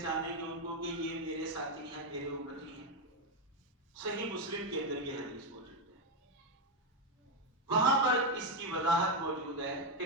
گے ان کو کہ یہ میرے ساتھی ہیں، میرے امتی ہیں؟ صحیح مسلم کے اندر یہ حدیث موجود ہے، وہاں پر اس کی وضاحت موجود ہے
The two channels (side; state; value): both; normal; correlation 0.05